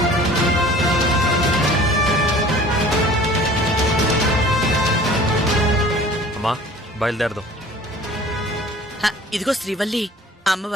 అమ్మా, బయలుదేరదాం. ఇదిగో శ్రీవల్లి,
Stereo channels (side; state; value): both; normal; correlation 0.47